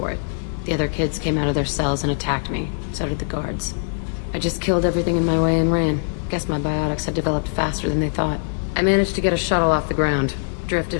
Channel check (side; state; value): right; silent; digital silence